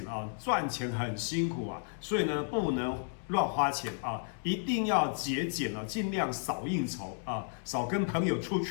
啊，赚钱很辛苦啊，所以呢不能乱花钱啊，一定要节俭啊，尽量少应酬啊，少跟朋友出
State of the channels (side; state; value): right; silent; digital silence